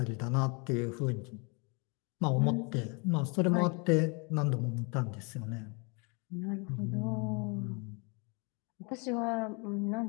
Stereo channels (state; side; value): quieter; right; 32.5 dB